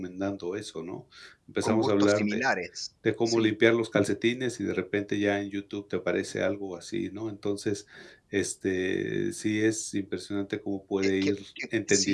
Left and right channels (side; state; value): both; identical; correlation 1.00